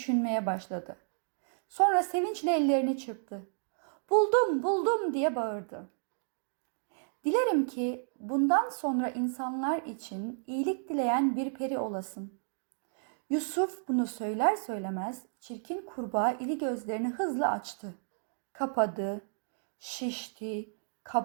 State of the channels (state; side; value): silent; left; digital silence